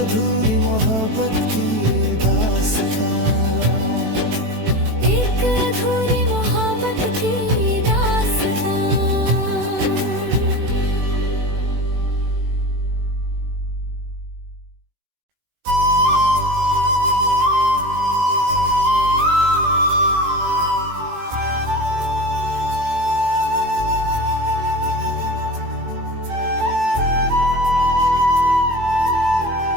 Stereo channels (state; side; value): late; left; 18 ms